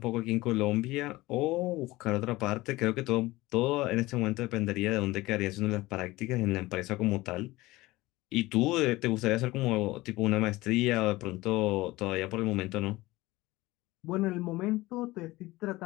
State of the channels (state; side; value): quieter; right; 19.5 dB